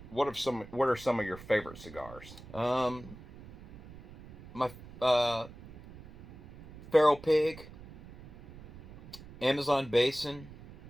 what are some of your favorite cigars? Um, my Feral Pig, Amazon Basin,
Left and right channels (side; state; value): right; noise; rumble, 18 dB below the sound